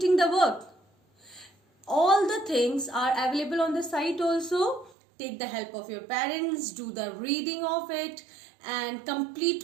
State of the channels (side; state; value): left; drops out; at 5.0 s